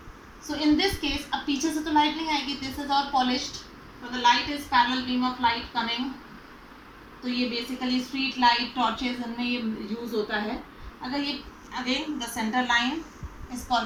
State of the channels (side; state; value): both; identical; correlation 1.00